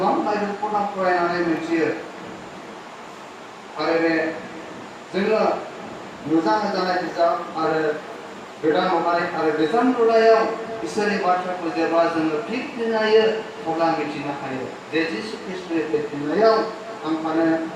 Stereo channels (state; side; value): identical; both; correlation 1.00